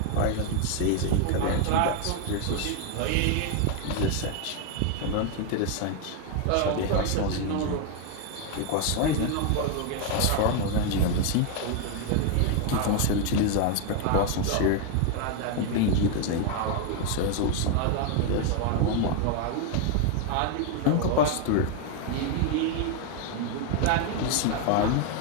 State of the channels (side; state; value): both; different; correlation 0.01